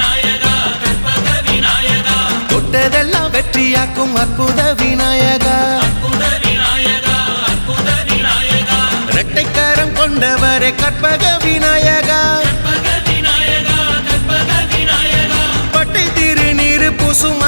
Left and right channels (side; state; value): both; inverted; correlation -1.00